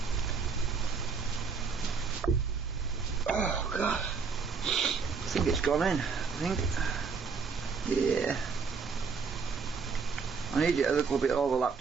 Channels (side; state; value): left; quieter; 5.3 dB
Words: Oh God, I think it's gone in, yeah. I need it a little bit